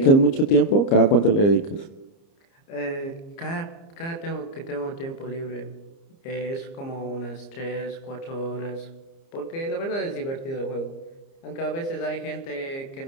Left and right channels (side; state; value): right; late; 30 ms